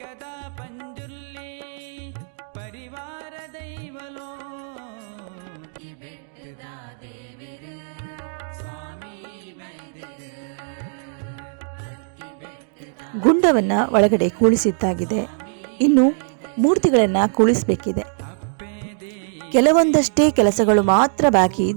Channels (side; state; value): left; silent; digital silence